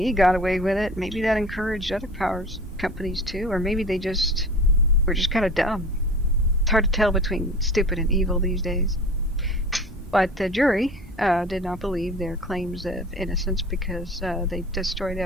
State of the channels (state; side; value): normal; both; correlation 0.39